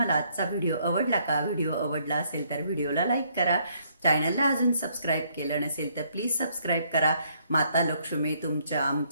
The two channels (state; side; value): inverted; both; correlation -0.68